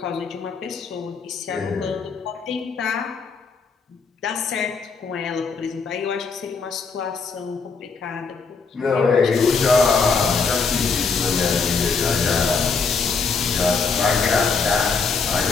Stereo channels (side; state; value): right; quieter; 5.0 dB